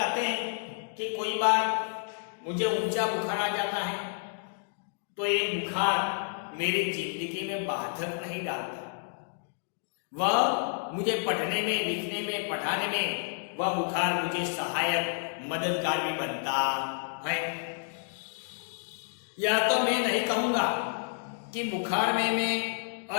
हैं कि कोई बार मुझे ऊंचा बुखार आ जाता है तो ये बुखार मेरी जिंदगी में बाधक नहीं डालता। वह मुझे पढ़ने में, लिखने में, पढ़ाने में वह बुखार मुझे सहायक, मददगार भी बनता है। यह तो मैं नहीं कहूंगा कि बुखार में मैं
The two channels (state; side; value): silent; right; digital silence